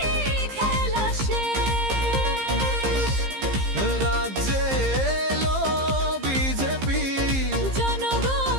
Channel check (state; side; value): late; left; 15 ms